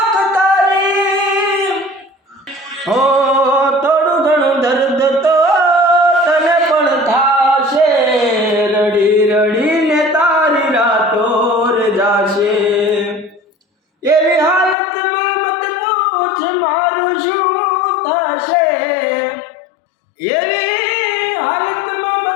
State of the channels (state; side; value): drops out; right; at 14.8 s